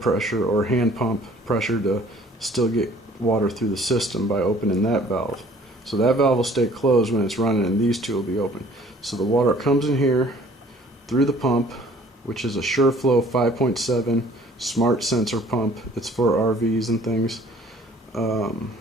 or hand pump pressure to still get water through the system by opening that valve. So that valve will stay closed when it's running, and these two will be open. So the water comes in here through the pump, which is a SureFlow 5.7 smart sensor pump. It's for RVs and things.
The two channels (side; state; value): both; normal; correlation 0.55